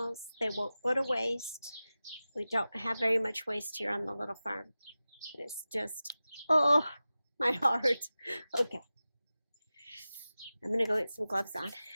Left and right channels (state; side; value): inverted; both; correlation -0.95